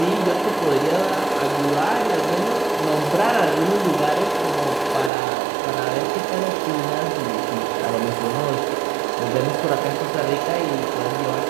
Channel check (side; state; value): left; drops out; at 5.1 s